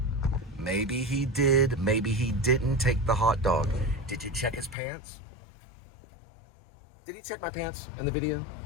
Maybe he did, maybe he didn't take the hot dog. Did you check his pants? Did he check my pants in the video?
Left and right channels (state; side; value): drops out; right; at 4.8 s